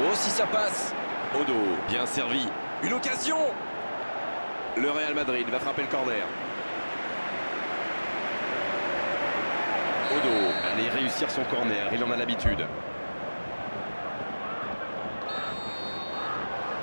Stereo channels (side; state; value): both; inverted; correlation -1.00